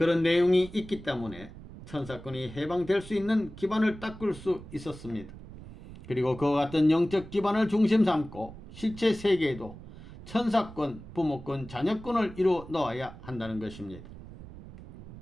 내용이 있기 때문에 천사권이 해방될 수 있는 기반을 닦을 수 있었습니다. 그리고 그와 같은 영적 기반을 중심 삼고 실체 세계에도 천사권, 부모권, 자녀권을 이루어 넣어야 한다는 것입니다.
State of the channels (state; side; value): noise; right; rumble, 16 dB below the sound